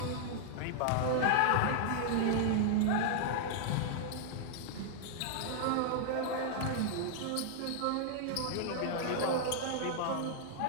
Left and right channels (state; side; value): different; both; correlation -0.01